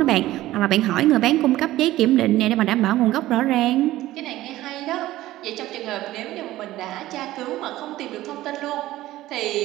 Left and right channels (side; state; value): left; quieter; 15.8 dB